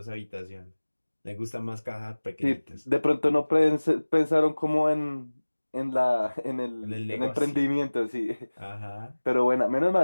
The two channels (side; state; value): both; inverted; correlation -1.00